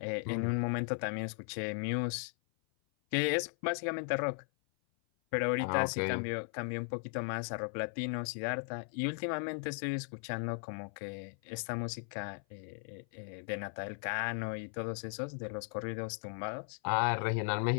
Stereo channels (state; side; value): silent; right; 53 dB below the other